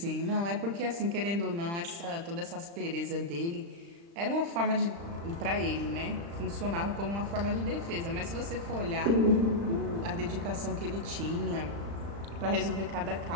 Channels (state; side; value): late; left; 35 ms